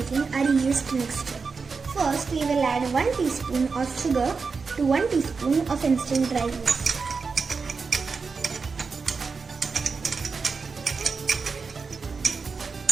our yeast mixture. First we will add 1 teaspoon of sugar to 1 teaspoon of instant dry yeast.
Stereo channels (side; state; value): left; quieter; 4.9 dB